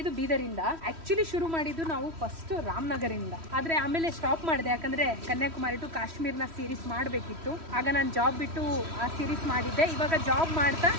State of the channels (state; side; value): late; left; 3.1 ms